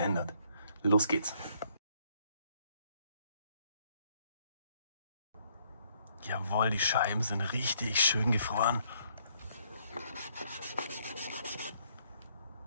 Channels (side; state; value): both; inverted; correlation -0.68